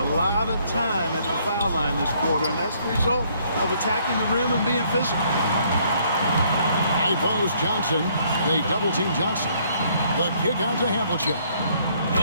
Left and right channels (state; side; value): inverted; both; correlation -0.66